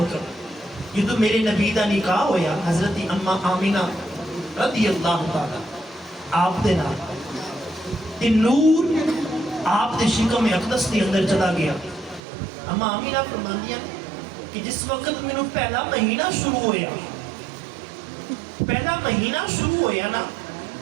جدو میرے نبی دا نکاح ہویا حضرت اماں آمینہ رضی اللہ تعالی آپ دے نام تے نور آپ دے شکم اقدس دے اندر چلا گیا۔ اماں آمینہ فرماندیاں کہ جس وقت میں پہلا مہینہ شروع ہویا، پہلا مہینہ شروع ہویا نا،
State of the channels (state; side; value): drops out; left; at 12.2 s